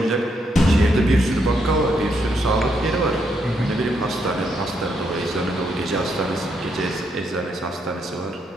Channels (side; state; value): both; normal; correlation 0.77